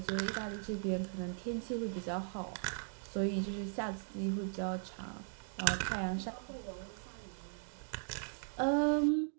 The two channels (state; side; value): silent; left; digital silence